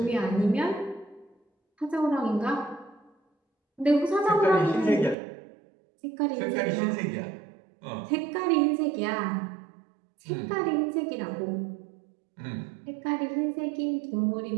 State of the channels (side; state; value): left; drops out; at 5.2 s